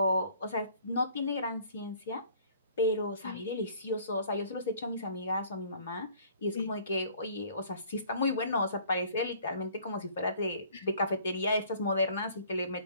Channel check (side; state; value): both; inverted; correlation -0.55